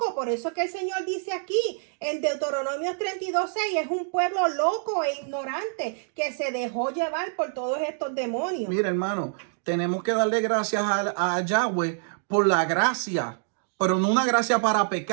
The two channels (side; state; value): left; silent; digital silence